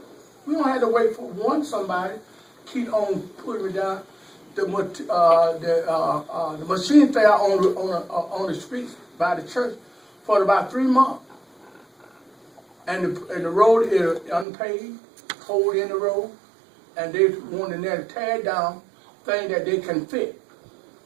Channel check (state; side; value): drops out; left; at 14.5 s